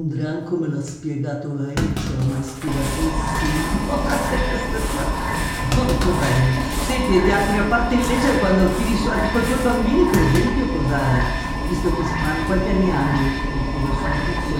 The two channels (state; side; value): identical; both; correlation 1.00